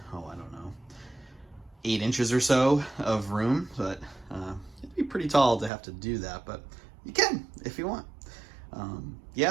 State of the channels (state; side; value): drops out; left; at 5.7 s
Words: 8 inches or so of room, but it'd be pretty tall to have to do that, but you can if you want.